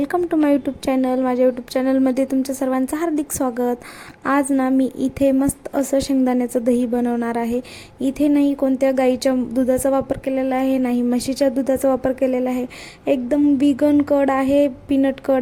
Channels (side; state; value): both; identical; correlation 1.00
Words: to my YouTube channel. माझ्या YouTube चॅनलमध्ये तुमचं सर्वांचं हार्दिक स्वागत. आज ना मी इथे मस्त असं शेंगदाण्याचं दही बनवणार आहे. इथे नाही कोणत्या गाईच्या दुधाचा वापर केलेला आहे, नाही म्हशीच्या दुधाचा वापर केलेला आहे. एकदम विगन कड आहे, पीनट